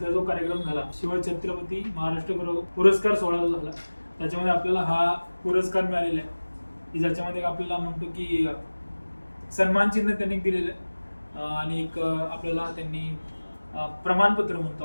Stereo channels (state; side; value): inverted; both; correlation -1.00